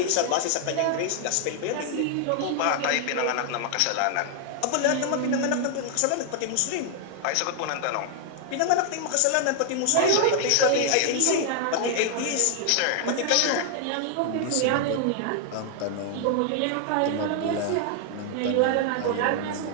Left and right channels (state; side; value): different; both; correlation 0.00